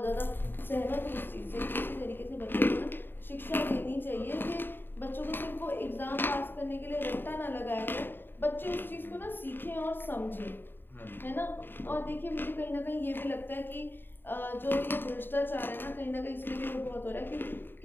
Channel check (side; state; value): right; late; 0.096 ms